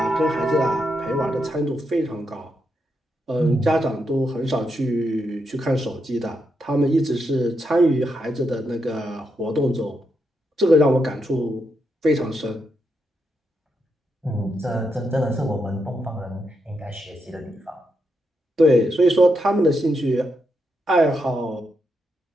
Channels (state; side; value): normal; both; correlation 0.82